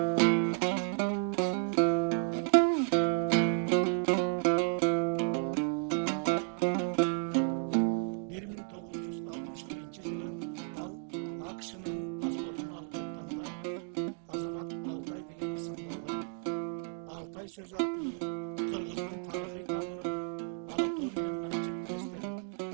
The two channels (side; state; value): left; silent; 56 dB below the other